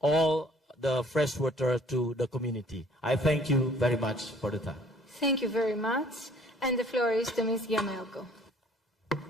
the fresh water to the community. I thank you very much for the time. Thank you very much. And the floor is to Ms. Yamelko.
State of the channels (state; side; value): normal; both; correlation 0.56